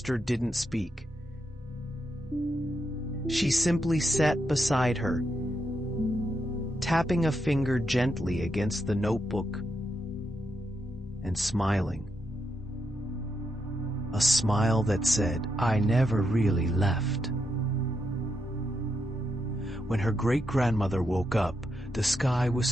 didn't speak. She simply sat beside her, tapping a finger gently against the notebook and smiling. A smile that said, "I never really left." When her great-grandmother woke up, the sky was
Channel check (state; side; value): normal; both; correlation 0.82